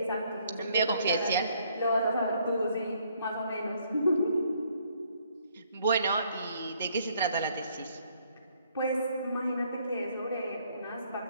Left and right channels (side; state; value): both; inverted; correlation -0.66